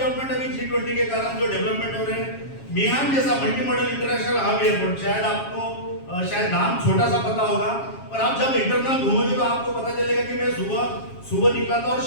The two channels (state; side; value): late; right; 7.3 ms